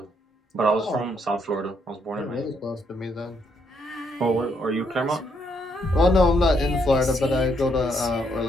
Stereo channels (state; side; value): normal; both; correlation 0.74